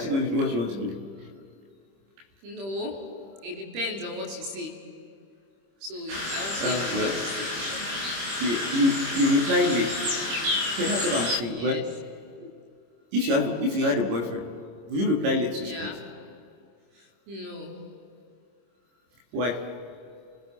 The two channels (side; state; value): left; late; 26 ms